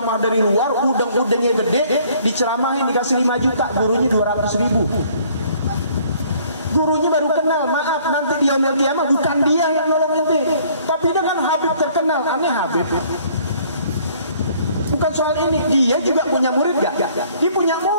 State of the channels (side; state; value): both; inverted; correlation -0.59